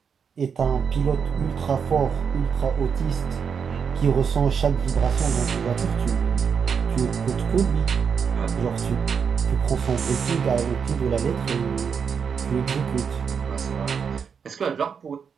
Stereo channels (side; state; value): left; quieter; 6.6 dB